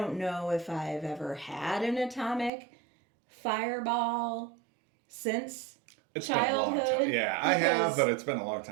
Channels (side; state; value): left; drops out; at 2.5 s